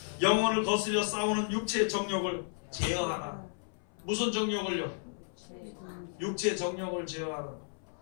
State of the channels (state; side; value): silent; right; 56 dB below the other